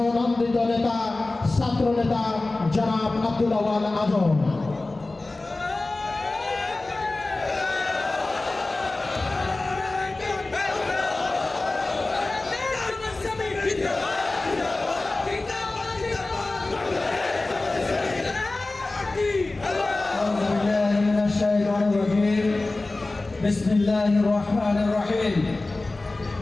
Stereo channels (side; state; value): right; quieter; 3.1 dB